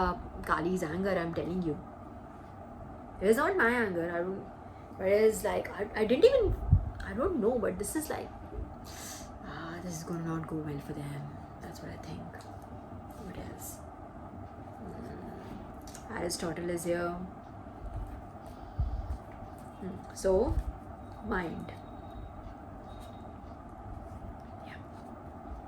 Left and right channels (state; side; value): identical; both; correlation 1.00